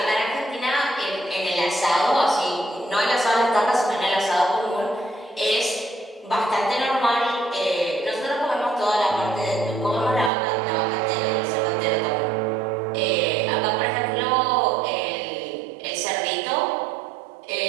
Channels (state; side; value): drops out; left; at 10.3 s